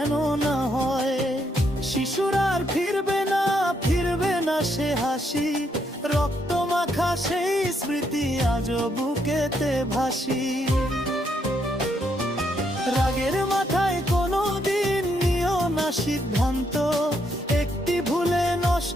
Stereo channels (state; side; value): normal; both; correlation 0.75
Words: না হয়। শিশুর আর ফিরবে না সে হাসি, রক্ত মাখা সেই স্মৃতি আজও বুকেতে ভাসি। রাগের মাথায় কোনো দিন নিও না সিদ্ধান্ত, একটি ভুলে